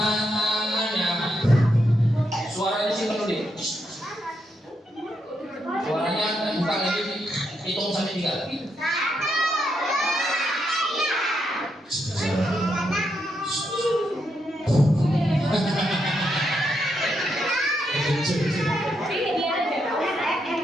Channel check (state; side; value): normal; both; correlation 0.80